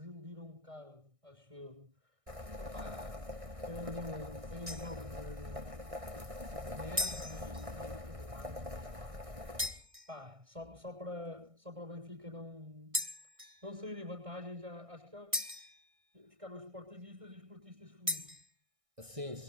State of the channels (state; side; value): late; left; 1.6 ms